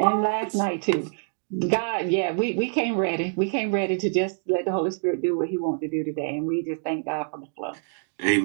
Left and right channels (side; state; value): left; silent; digital silence